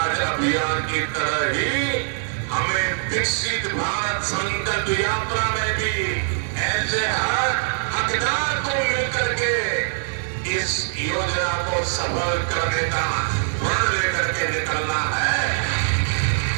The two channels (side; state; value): left; silent; digital silence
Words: अभियान की तरह ही हमें विकसित भारत संकल्प यात्रा में भी ऐसे हर हकदार को मिलकर के इस योजना को सफल करने का प्रण लेकर के निकलना है।